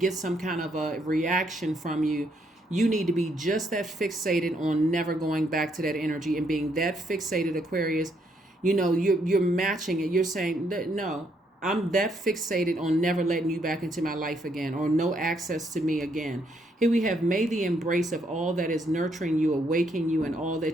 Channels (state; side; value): normal; both; correlation 0.73